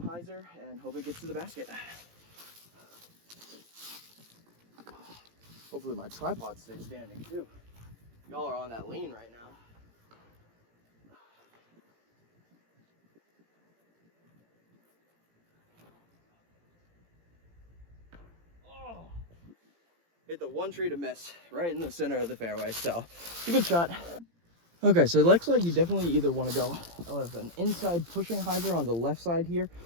and hope it gets to the basket. Hopefully my tripod stays standing too. Y'all are on that lean right now. Oh, hit the one tree to miss right in the center of the fairway, so it's a good shot. Okay, so it looks like you definitely either want to go with an inside pushing hyzer on the left side here,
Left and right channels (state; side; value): late; left; 17 ms